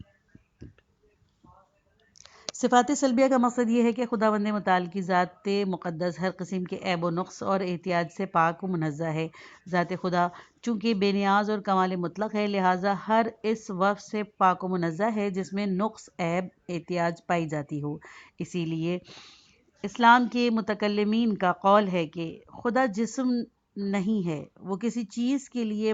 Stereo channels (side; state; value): both; identical; correlation 1.00